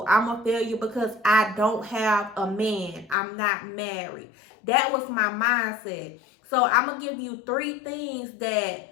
I'm a failure because I don't have a man. I'm not married. That was my mindset. So I'm going to give you 3 things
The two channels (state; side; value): drops out; right; at 3.2 s